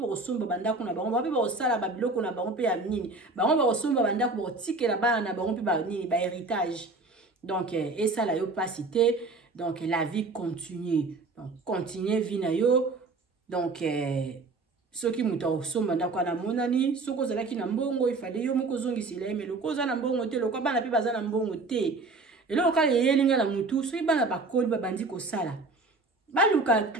osomba bandako na bango pe ba osala ba biloko na bango pe ya nini bango ba osomba bandako ba tikela bana na bango pe ba nini ba héritage donc et ça la yo pas cité donc la vie continue donc continuer vie na yo donc soki muta osomba ndako na monani soko ozalaki na mbongo ifade yo moko zongisila mais loko za na mbongo te loko bana pe baza na mbongo te Et là, quand il y a des gens qui sont bana bakoli babandi ko sala. Baluka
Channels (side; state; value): left; quieter; 3.5 dB